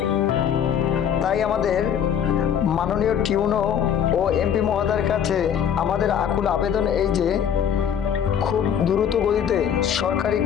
তাই আমাদের মাননীয় টিউনো ও এমপি মহোদয়ের কাছে আমাদের আকুল আবেদন এই যে খুব দ্রুত গতিতে সরকারি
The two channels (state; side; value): quieter; right; 8.5 dB